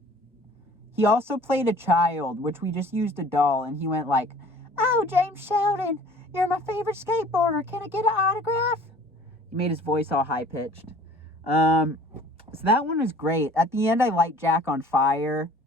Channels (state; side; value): normal; both; correlation 0.49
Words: He also played a child, which we just used a doll. And he went like, "Oh, James Sheldon, you're my favorite skateboarder. Can I get an autograph?" He made his voice all high-pitched. So that one was great. At the end, I light Jack on fire.